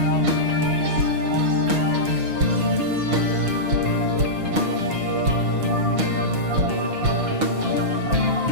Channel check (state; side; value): late; left; 6.6 ms